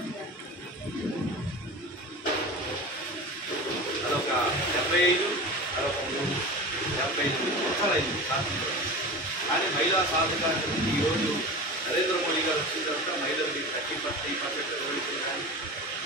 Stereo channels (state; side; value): normal; both; correlation 0.31